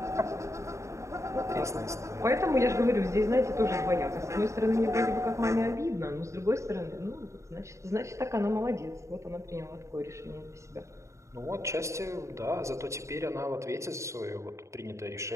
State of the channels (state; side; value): late; left; 0.14 ms